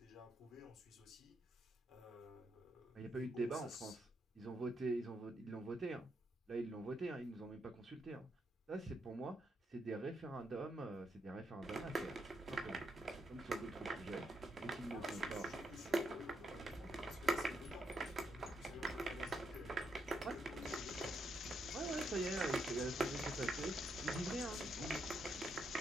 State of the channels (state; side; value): normal; both; correlation 0.79